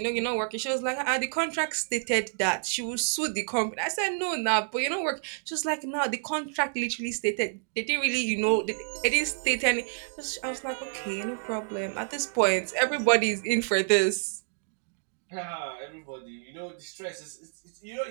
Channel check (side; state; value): left; silent; digital silence